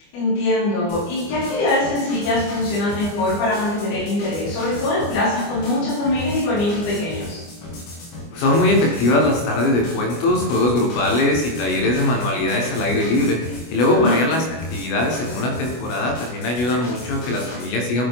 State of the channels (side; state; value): right; late; 25 ms